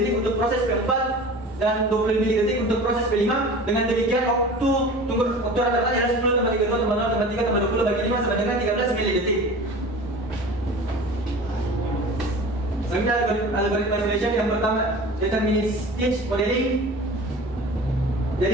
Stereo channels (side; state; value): both; normal; correlation 0.38